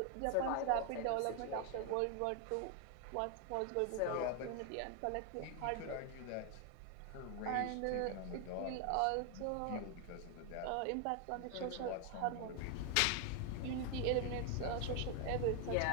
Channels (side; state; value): both; different; correlation 0.00